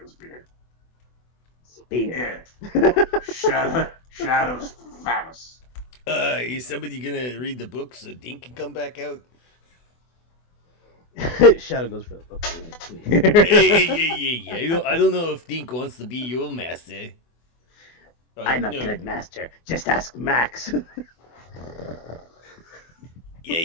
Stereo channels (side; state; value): right; late; 24 ms